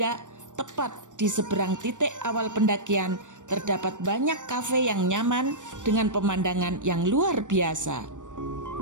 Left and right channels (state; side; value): late; left; 0.86 ms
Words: tepat di seberang titik awal pendakian terdapat banyak kafe yang nyaman dengan pemandangan yang luar biasa.